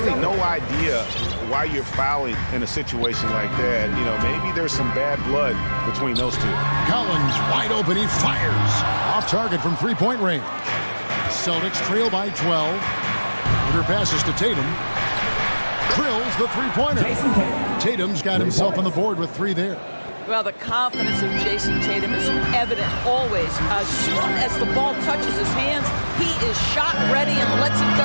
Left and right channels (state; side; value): inverted; both; correlation -1.00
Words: no idea why you're fouling in a situation like that. You know, maybe there's some bad blood between those two. Collins wide open, he fires. Off target from three-point range. Celtics trail by 12. Under passes to Tatum. Drills the three-pointer. Tatum's got himself on the board with 3 there. Well, the confidence of Jason Tatum is evident always. As soon as the ball touches his hands, he is shot ready and lets it